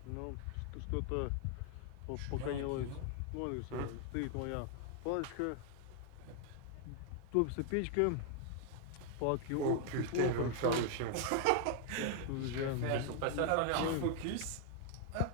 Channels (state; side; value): different; both; correlation 0.00